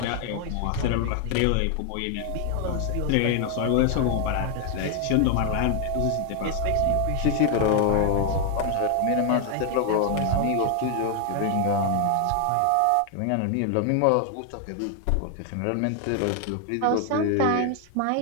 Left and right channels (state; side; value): different; both; correlation 0.00